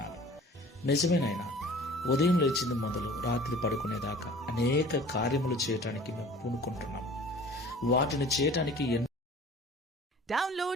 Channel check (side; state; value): both; normal; correlation 0.46